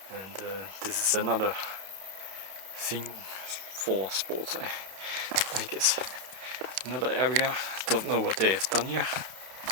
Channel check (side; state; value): left; late; 31 ms